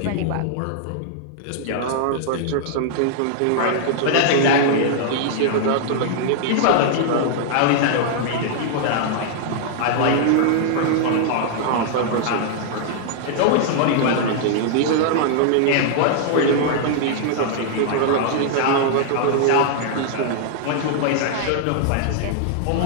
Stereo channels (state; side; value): different; both; correlation -0.01